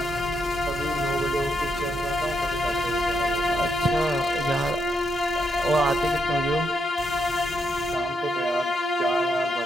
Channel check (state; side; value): normal; both; correlation 0.79